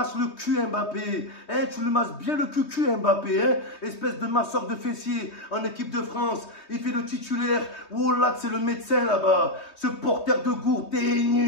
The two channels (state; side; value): late; right; 3.2 ms